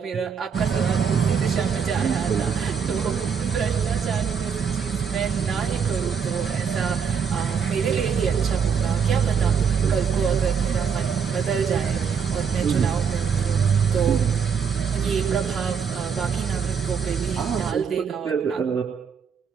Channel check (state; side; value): quieter; left; 6.5 dB